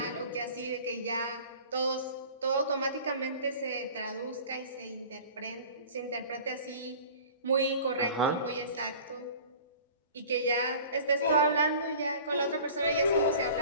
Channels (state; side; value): inverted; both; correlation -0.43